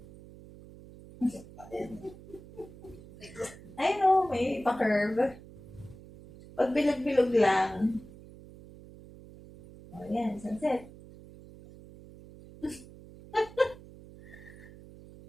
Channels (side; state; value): right; noise; hum, 18 dB below the sound